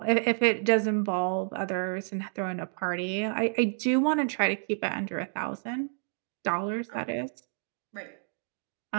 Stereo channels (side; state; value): left; silent; digital silence